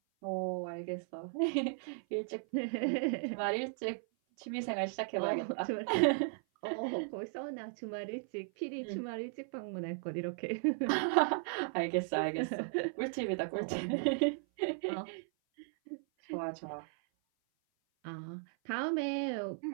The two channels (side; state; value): left; silent; 54 dB below the other